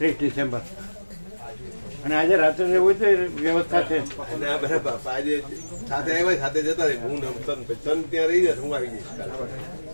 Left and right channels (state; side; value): inverted; both; correlation -1.00